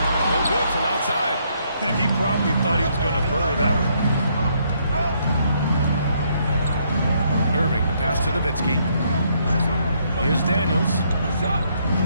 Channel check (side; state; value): both; inverted; correlation -0.72